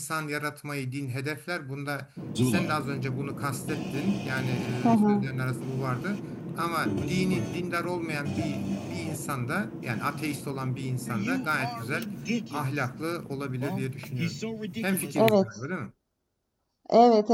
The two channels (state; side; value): identical; both; correlation 1.00